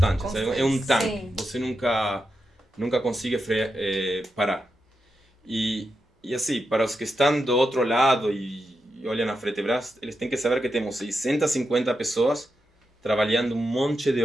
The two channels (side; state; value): both; normal; correlation 0.87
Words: É um tanque. Sim. Você nunca consegue parar. E assim, para os que estão do outro lado e olham a Fretebras, eles têm que saber que temos 650 pessoas trabalhando um monte de